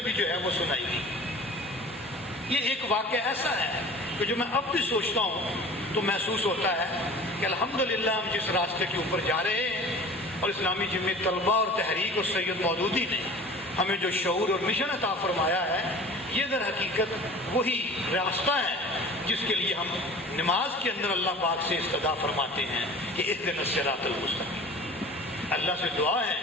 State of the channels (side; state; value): both; normal; correlation 0.42